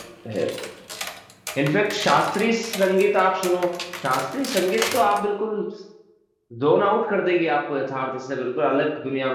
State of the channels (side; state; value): both; identical; correlation 1.00